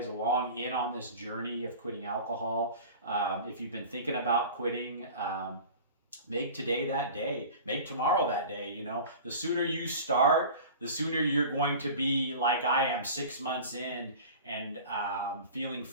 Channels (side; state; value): both; inverted; correlation -0.38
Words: along in on this journey of quitting alcohol. If you've been thinking about quitting, make today that day. Make tomorrow that day. The sooner you start, the sooner you're going to be like I am 6 months in, and feeling